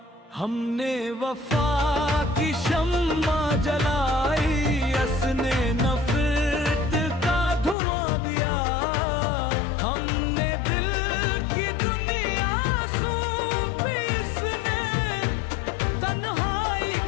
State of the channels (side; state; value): right; drops out; at 7.8 s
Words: हमने वफा की शम्मा जलाई, असने नफरत का धुआं दिया। हमने दिल की दुनिया सौंपी, इसने तन्हाई